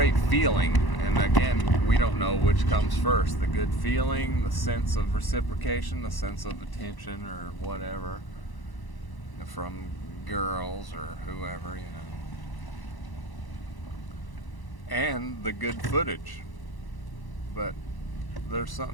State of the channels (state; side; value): late; right; 1.0 ms